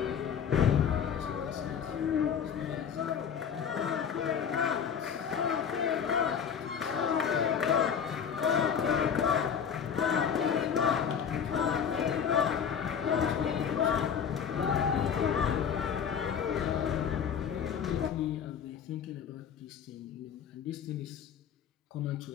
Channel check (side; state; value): right; quieter; 7.6 dB